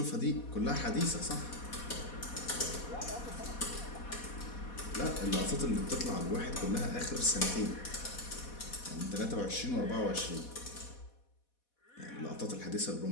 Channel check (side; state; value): right; late; 4.2 ms